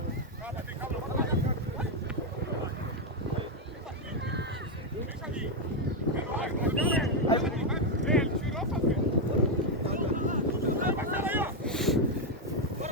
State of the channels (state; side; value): normal; both; correlation 0.03